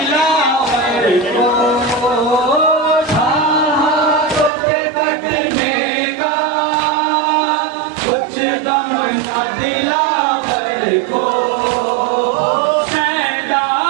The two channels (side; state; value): left; drops out; at 4.5 s